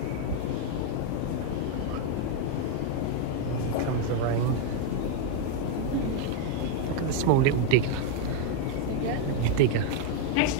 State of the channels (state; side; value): different; both; correlation 0.01